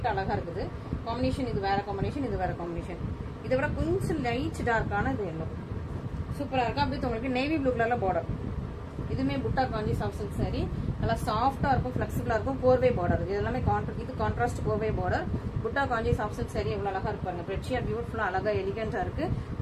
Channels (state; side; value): identical; both; correlation 1.00